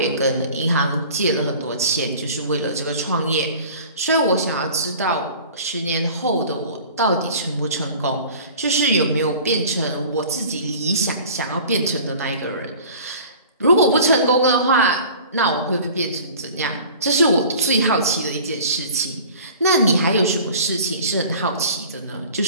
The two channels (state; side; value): inverted; both; correlation -0.44